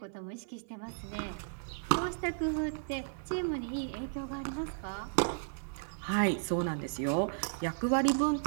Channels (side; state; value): left; silent; 55 dB below the other